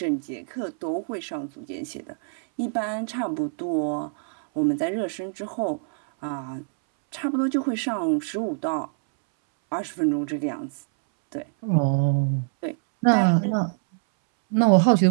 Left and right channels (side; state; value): left; silent; 62 dB below the other